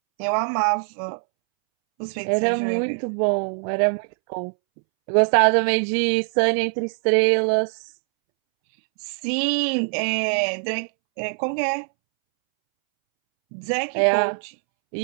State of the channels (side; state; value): left; silent; 64 dB below the other